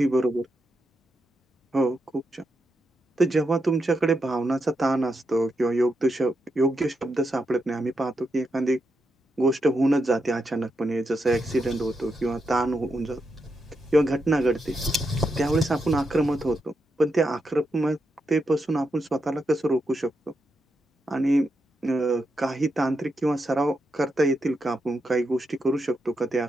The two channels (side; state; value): both; normal; correlation 0.84